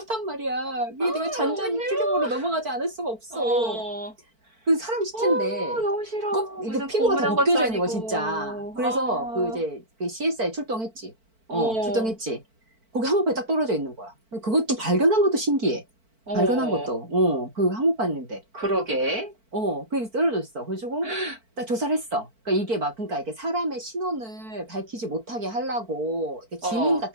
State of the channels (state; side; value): late; left; 4.5 ms